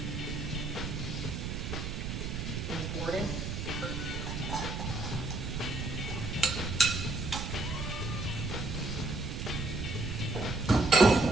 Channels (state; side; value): noise; right; rumble, 4 dB below the sound